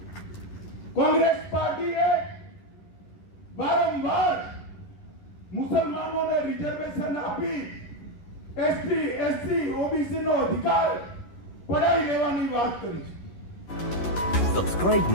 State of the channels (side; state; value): right; late; 11 ms